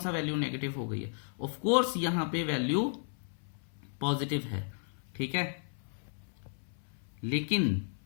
वैल्यू नेगेटिव हो गई है। ऑफ कोर्स यहां पे वैल्यू पॉजिटिव है। ठीक है, लेकिन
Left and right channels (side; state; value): right; silent; 55 dB below the other